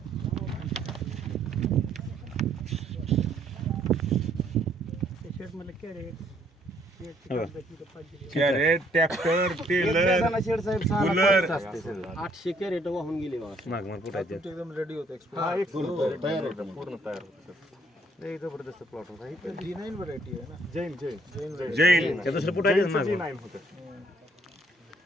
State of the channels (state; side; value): normal; both; correlation 0.66